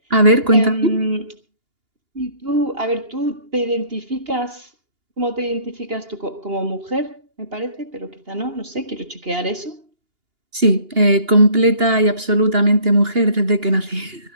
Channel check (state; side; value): late; left; 2.8 ms